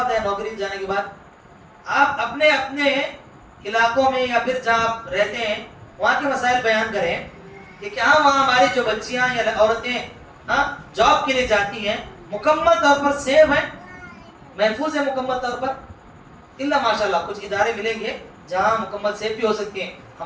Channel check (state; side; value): identical; both; correlation 1.00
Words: ہے نوکری جانے کے بعد آپ اپنے اپنے علاقوں میں یا پھر جہاں آپ رہتے ہیں وہاں کے مسائل بیان کریں کہ کیا وہاں ہماری جو بچیاں یا عورتیں جاب کے لیے جاتی ہیں مکمل طور پر سیف ہیں، محفوظ ہے مکمل طور پر؟ اللہ ماشاء اللہ کچھ ادارے ملیں گے جہاں مکمل سیف بھی ہو سکتی ہیں،